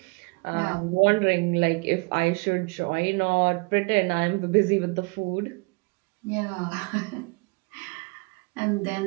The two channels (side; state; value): left; quieter; 29.8 dB